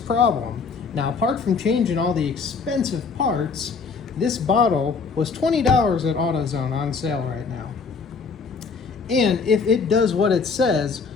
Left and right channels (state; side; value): quieter; right; 5.0 dB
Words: Now, apart from changing all the expensive parts, this bottle was $20 at AutoZone on sale right now. And if it does what it says,